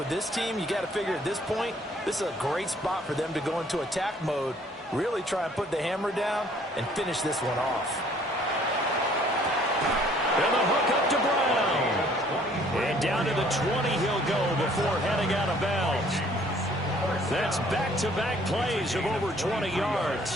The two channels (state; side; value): normal; both; correlation 0.59